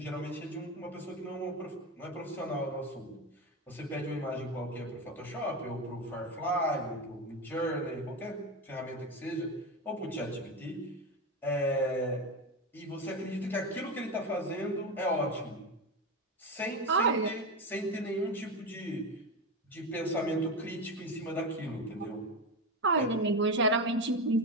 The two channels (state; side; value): normal; both; correlation 0.17